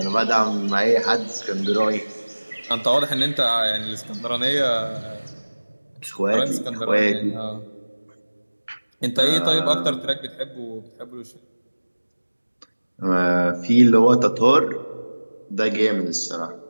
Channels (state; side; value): inverted; both; correlation -1.00